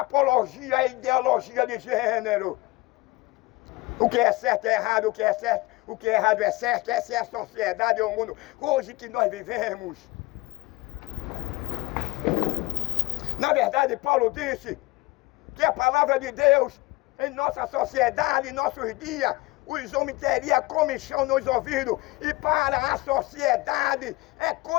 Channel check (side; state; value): right; quieter; 22.1 dB